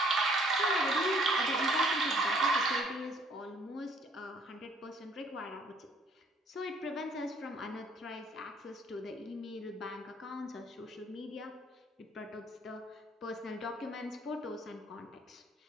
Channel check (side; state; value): both; normal; correlation 0.61